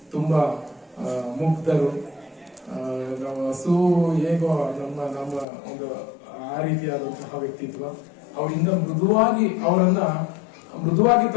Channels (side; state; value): right; drops out; at 5.5 s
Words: ತುಂಬಾ ಮುಗ್ಧರು. ಹಸು ಹೇಗೋ ನಮ್ಮ ಒಂದು ಆ ರೀತಿಯಾದಂತಹ ವ್ಯಕ್ತಿತ್ವ. ಅವರಿಂದ ಮೃದುವಾಗಿ